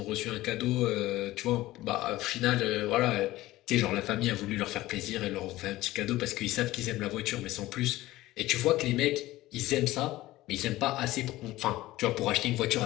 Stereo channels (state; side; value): quieter; right; 17.0 dB